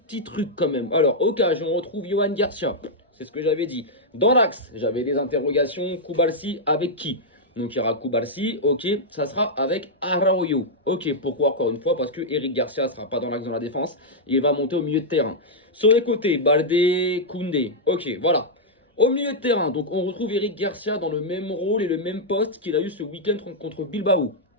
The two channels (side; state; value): both; normal; correlation -0.06